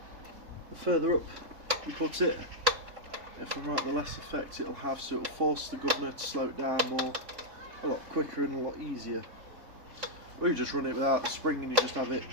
the further up you put it, if I'm right, the less effect it'll have, so it'll force the governor to slow it down more, a lot quicker and a lot easier. Or you just run it without the spring and you just have it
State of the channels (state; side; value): late; left; 3.7 ms